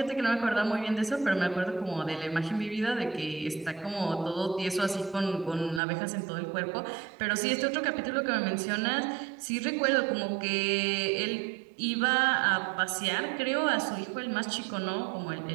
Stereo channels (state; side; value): drops out; left; at 5.8 s